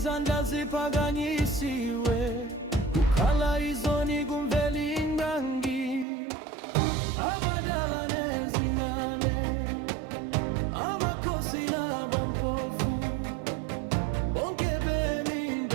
ziphakanyisiwe, kukhala izoni kumveli ngangi. Abadala nezingane, amakhosi nabampofu, bonke bemi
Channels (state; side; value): drops out; left; at 6.1 s